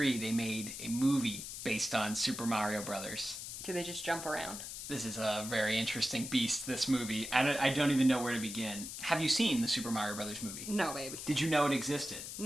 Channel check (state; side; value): noise; left; hiss, 8 dB below the sound